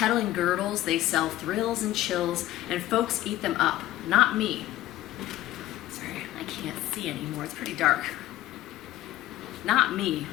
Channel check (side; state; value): right; quieter; 15.1 dB